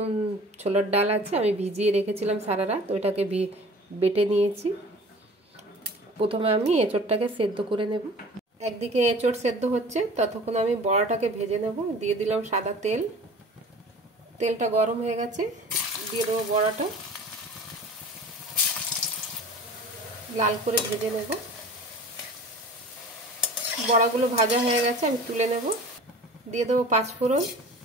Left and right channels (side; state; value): both; normal; correlation 0.42